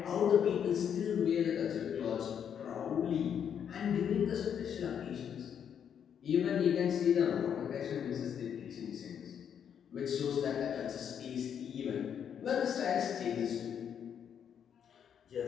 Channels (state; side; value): quieter; right; 8.3 dB